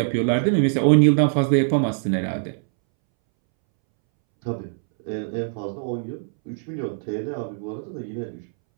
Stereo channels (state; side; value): silent; left; 63 dB below the other